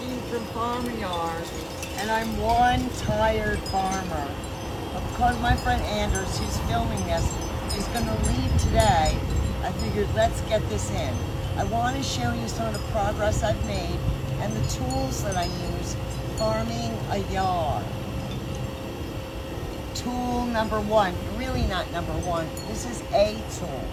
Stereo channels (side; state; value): both; identical; correlation 1.00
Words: from Farmer Yard, and I'm one tired farmer. But because my friend Anders, who's filming this, is going to leave today, I figured let's get this in. I want to show you some of the progress I've made and the tools that I use farming a yard. Tool number one, really not number one, this is a tool.